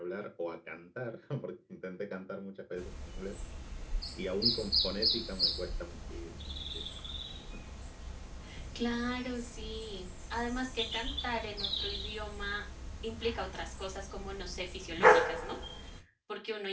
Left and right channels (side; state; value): both; identical; correlation 1.00